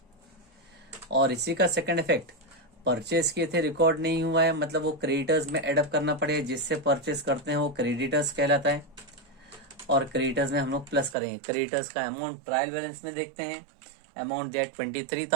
और इसी का सेकंड इफेक्ट, परचेज किए थे रिकॉर्ड नहीं हुआ है मतलब वो क्रेडिटर्स में एडअप करना पड़ेगा, जिससे परचेज करते हैं वो क्रेडिटर्स कहलाता है। और क्रेडिटर्स में हम लोग प्लस करेंगे। क्रेडिटर्स का अमाउंट ट्रायल बैलेंस में देखते हैं, अमाउंट दिया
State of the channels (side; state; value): left; drops out; at 11.2 s